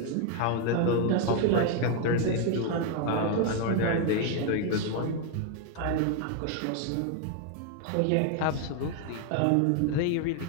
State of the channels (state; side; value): different; both; correlation 0.01